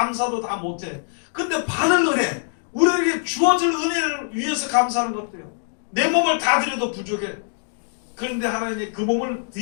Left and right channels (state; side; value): silent; right; 63 dB below the other